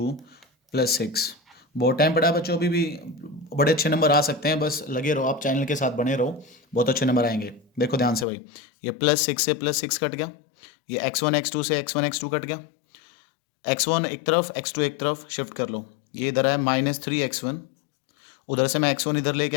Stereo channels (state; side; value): drops out; right; at 8.2 s